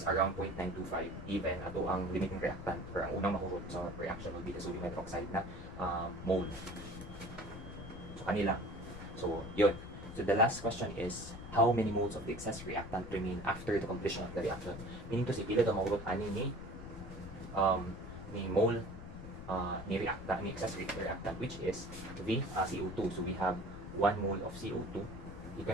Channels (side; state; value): left; noise; rumble, 12 dB below the sound